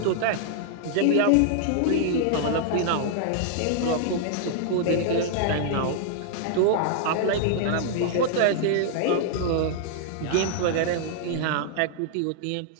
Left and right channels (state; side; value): different; both; correlation -0.01